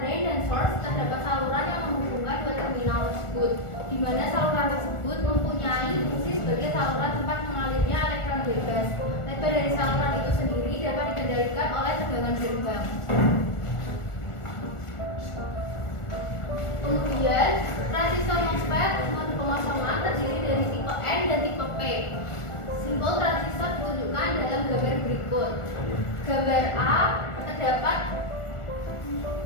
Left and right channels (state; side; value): late; right; 1.4 ms